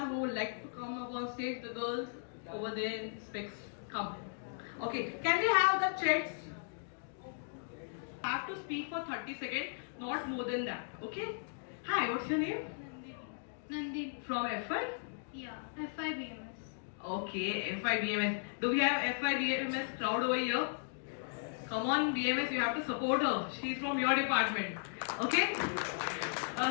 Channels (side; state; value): right; silent; digital silence